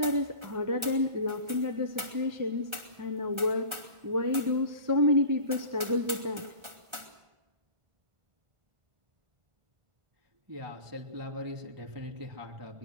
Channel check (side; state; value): left; late; 1.3 ms